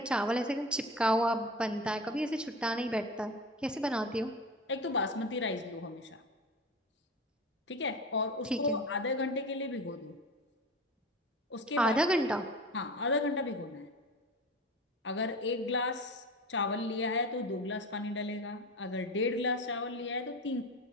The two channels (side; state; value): both; normal; correlation 0.31